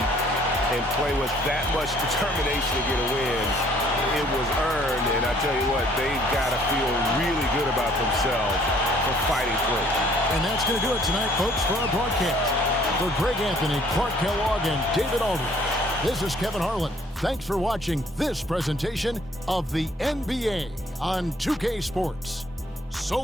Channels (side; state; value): both; normal; correlation 0.60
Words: and play with that much determination to get a win, it was earned, and I tell you what, they've got to feel really good about themselves for fighting through. And that's going to do it tonight, folks, for our broadcast. For Greg Anthony, Clark Kellogg, and David Aldridge, this is Kevin Harlan. Thanks for watching this presentation of the NBA on 2K Sports. So